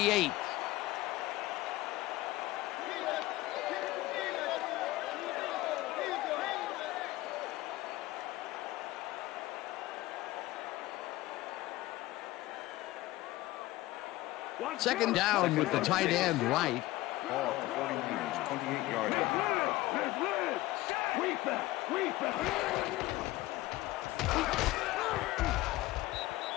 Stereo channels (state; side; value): quieter; right; 17.9 dB